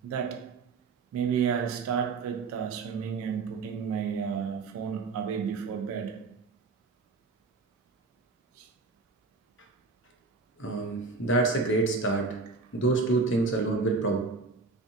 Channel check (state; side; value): quieter; left; 4.1 dB